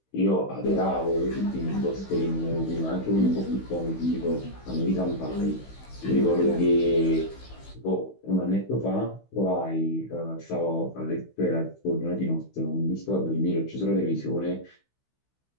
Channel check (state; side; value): late; right; 16 ms